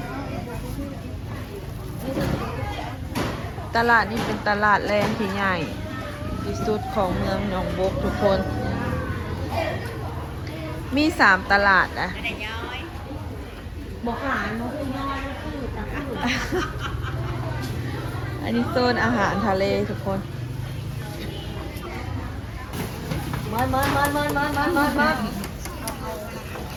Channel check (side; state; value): both; identical; correlation 1.00